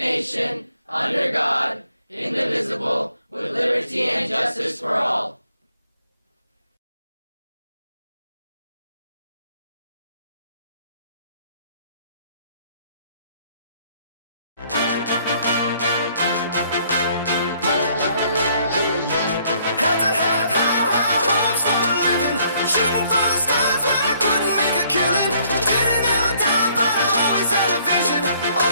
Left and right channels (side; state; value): both; inverted; correlation -0.64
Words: under God, indivisible, with liberty and justice for all.